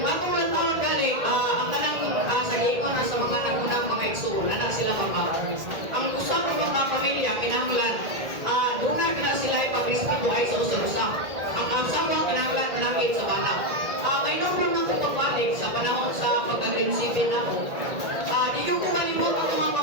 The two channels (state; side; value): late; left; 1.9 ms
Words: atong lang tawag galing, ang kanang sa giingon na sa mga nagunang mga igsoon, anak sila mama. Ang usang mga pamilya, kinahanglan, doon na kina sila ipag-respeto ay sa usa-usa. Ang asawa, kinahanglan, manangit sa bana. May nobro ng pagbalik sa panahon sa pagkagrinsipin na di yung kumalimot ang mga